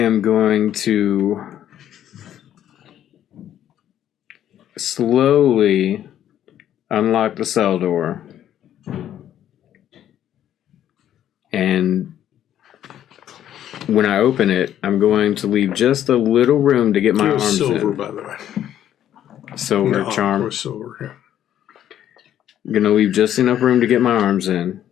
going to slowly unlock the cell door, and when I open it, I'm going to leave just a little room to get my arms silver, in. by the way. Silver charm. Or silver, yeah. I'm going to leave just enough room to get my arms in,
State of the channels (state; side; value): quieter; right; 11.0 dB